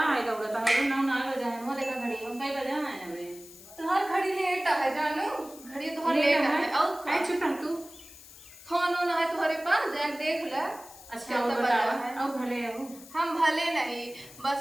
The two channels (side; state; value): left; noise; hiss, 19 dB below the sound